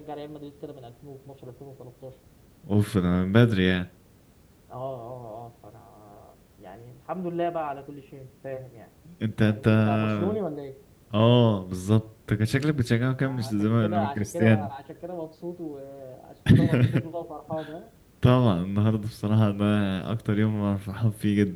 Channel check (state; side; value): identical; both; correlation 1.00